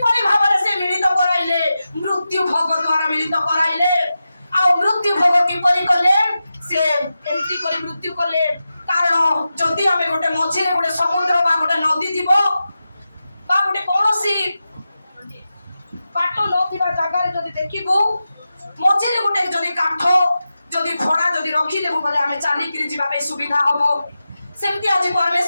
भाबरे से मिलित कराइले मृत्यु भोग द्वारा मिलित कराइले आ मृत्यु भोग किपरि कले से एंती करी मृत्यु कले तार कारण जदि आम गोटे मझे गोटे समुद्र बा गोटे नदी थी गोटे कौन बाट न जगार जदि देखू मझे गोटे जदि काठ जदि भड़ा जदि रखिदेबू बोले आम चलिकी जावाई सुविधा हम सेमती आज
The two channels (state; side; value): inverted; both; correlation -0.92